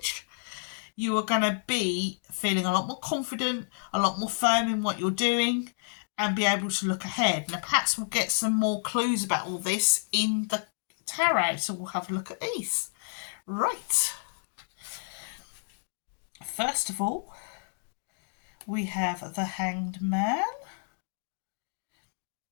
you are going to be feeling a lot more confident, a lot more firm in what you're doing, and be able to look ahead. Now, perhaps we'll get some more clues about all this in the tarot, so we'll have a look at these. Right. First of all, we have the Hanged Man.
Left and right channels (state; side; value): silent; right; digital silence